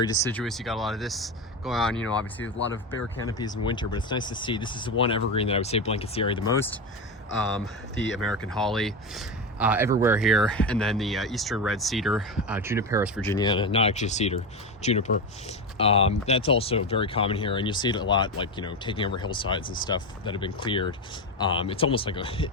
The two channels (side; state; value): both; normal; correlation 0.17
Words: deciduous. You got a lot of this going on, you know, obviously a lot of bare canopies in winter, but it's nice to see. This is the one evergreen that I would say blankets the area the most. The American holly. Everywhere here, and then the eastern red cedar, Juniperus virginiana, not actually a cedar, juniper. That's also very common here, and you'll see it a lot, like, you know, taking over hillsides and stuff that have been cleared. It's almost like